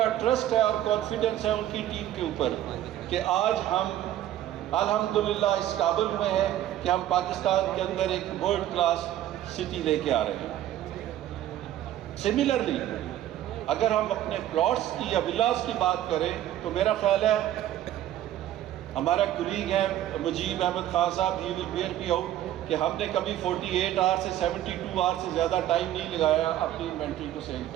ٹرسٹ ہے اور کانفیڈنس ہے ان کی ٹیم کے اوپر کہ آج ہم الحمدللہ اس قابل میں ہیں کہ ہم پاکستان کے اندر ایک ورلڈ کلاس سٹی لے کے آ رہے ہیں. سملرلی اگر ہم اپنے پلاٹس کی یا ولاز کی بات کریں تو میرا خیال ہے ہمارا کولیگ ہے مجیب احمد خان صاحب، ہی ول بیئر می آؤٹ، کہ ہم نے کبھی 48 آور سے 72 آور سے زیادہ ٹائم نہیں لگایا اپنی انوینٹری کو سیل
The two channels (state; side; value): quieter; left; 12.6 dB